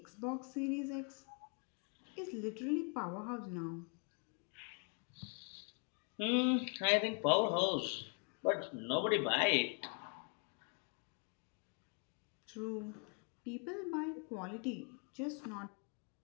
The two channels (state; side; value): quieter; right; 37.8 dB